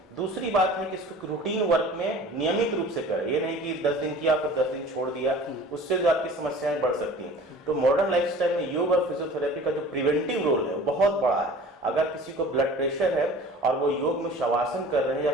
दूसरी बात है कि इसको रूटीन वर्क में नियमित रूप से करें, ये नहीं कि 10 दिन किया फिर 10 दिन छोड़ दिया, उससे जो आपकी समस्याएं बढ़ सकती हैं। तो मॉडर्न लाइफस्टाइल में योग और फिजियोथेरेपी का जो प्रिवेंटिव रोल है वो बहुत बड़ा है। अगर किसी को ब्लड प्रेशर है और वो योग में शवासन कर रहे हैं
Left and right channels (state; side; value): normal; both; correlation 0.44